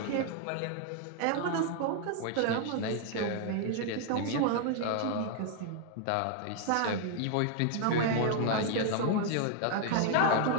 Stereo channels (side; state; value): both; different; correlation 0.00